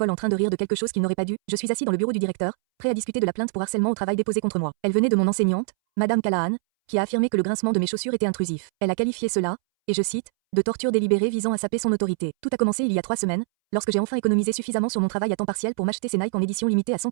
en train de rire de quelque chose qu'il n'aurait pas dû? Je suis assis dans le bureau du directeur, prêt à discuter de la plainte pour harcèlement au travail déposée contre moi. Elle venait de mon enseignante, Madame Callahan, qui a affirmé que le grincement de mes chaussures était intrusif. Elle a qualifié cela, et je cite, de torture délibérée visant à saper son autorité. Tout a commencé il y a 3 semaines, lorsque j'ai enfin économisé suffisamment sur mon travail à temps partiel pour m'acheter ces Nike en édition limitée à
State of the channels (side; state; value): left; silent; 62 dB below the other